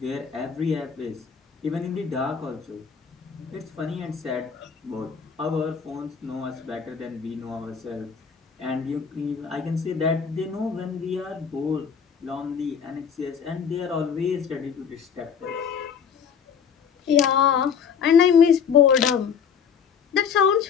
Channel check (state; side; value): quieter; right; 7.0 dB